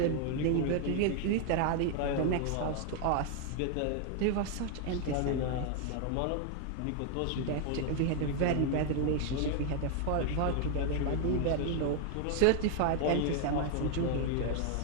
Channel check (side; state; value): both; different; correlation 0.00